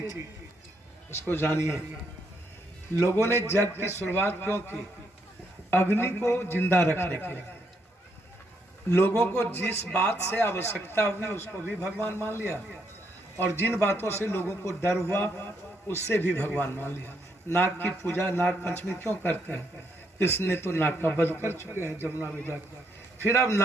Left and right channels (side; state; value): both; normal; correlation 0.75